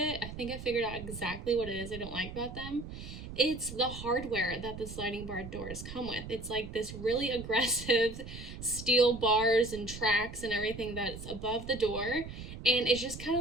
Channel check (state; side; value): noise; right; rumble, 11 dB below the sound